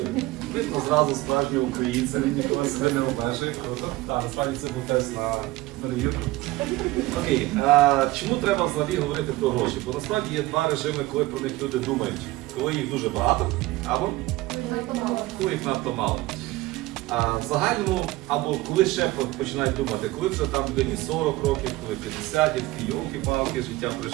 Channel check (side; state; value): left; quieter; 18.8 dB